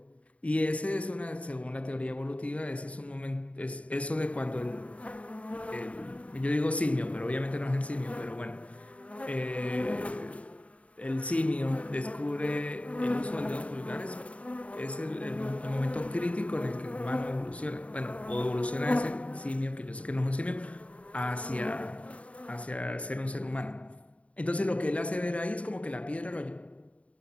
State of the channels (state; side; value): late; right; 0.065 ms